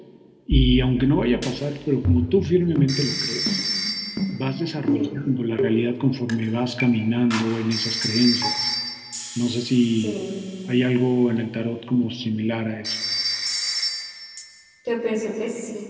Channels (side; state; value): both; identical; correlation 1.00